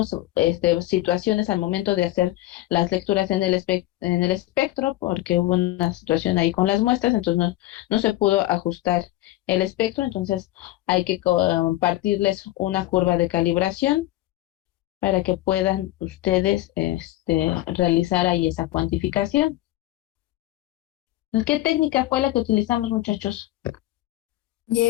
situaciones al momento de hacer las lecturas en el espectro, porque hubo una situación ahí con las muestras, entonces no se pudo ajustar el espectro, entonces hay que compartirles una curva de calibración para que puedan ustedes realizar ahí esa cuantificación. ¿Qué técnica fue la que utilizamos, muchachos?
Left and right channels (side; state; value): right; quieter; 16.2 dB